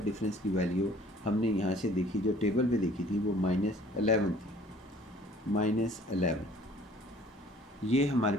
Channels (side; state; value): both; normal; correlation 0.53